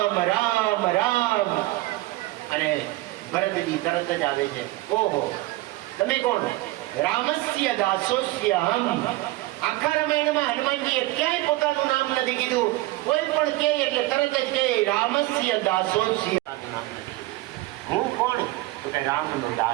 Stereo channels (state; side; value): quieter; left; 19.1 dB